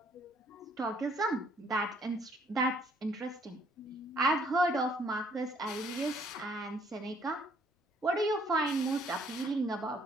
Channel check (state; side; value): normal; both; correlation 0.64